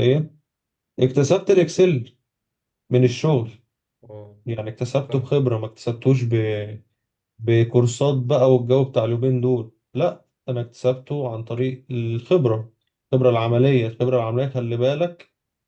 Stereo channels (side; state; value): both; identical; correlation 1.00